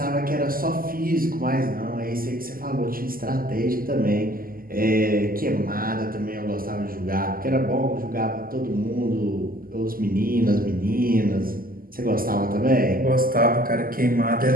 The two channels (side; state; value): left; late; 0.42 ms